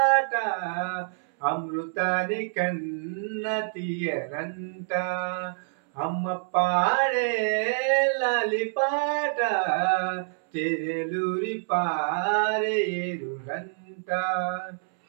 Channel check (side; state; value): left; silent; 60 dB below the other